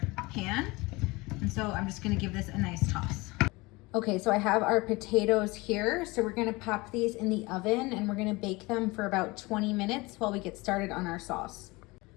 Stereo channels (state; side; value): quieter; right; 23.4 dB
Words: pan. And so I'm just gonna give this a nice toss. Okay, so I have our potatoes here. So we're gonna pop these in the oven and we're gonna bake them for about 20 minutes while we get started on our sauce.